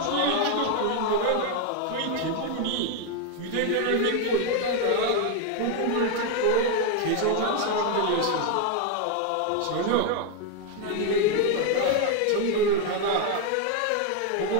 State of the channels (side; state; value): both; different; correlation 0.01